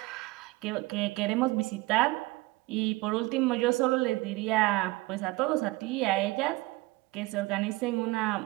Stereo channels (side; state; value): left; quieter; 21.5 dB